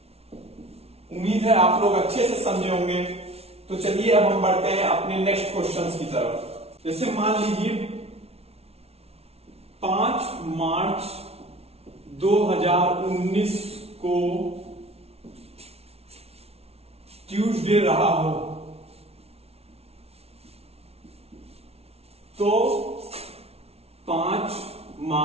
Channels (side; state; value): left; late; 0.30 ms